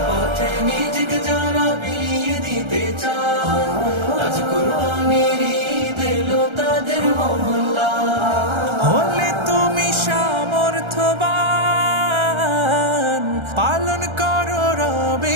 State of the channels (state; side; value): late; left; 1.3 ms